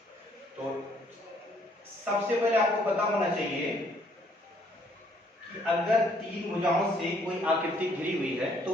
तो सबसे पहले आपको पता होना चाहिए कि अगर तीन भुजाओं से कोई आकृति घिरी हुई है तो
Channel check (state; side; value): normal; both; correlation 0.65